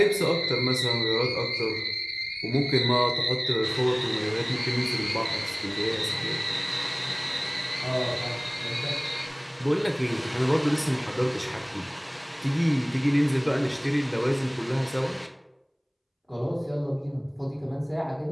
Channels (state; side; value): identical; both; correlation 1.00